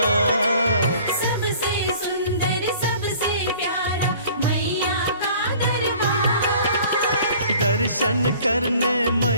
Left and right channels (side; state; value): both; inverted; correlation -0.50